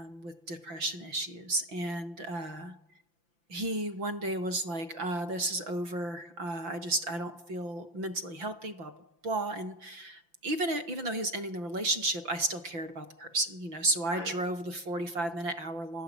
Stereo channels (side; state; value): left; late; 5.9 ms